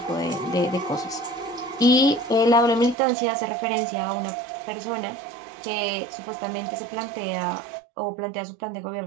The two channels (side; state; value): left; drops out; at 3.0 s